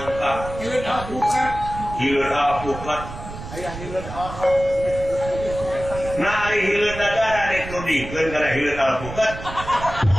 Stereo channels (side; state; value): right; noise; rumble, 11 dB below the sound